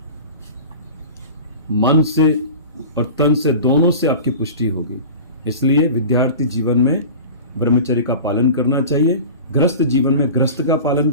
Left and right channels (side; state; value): both; inverted; correlation -0.35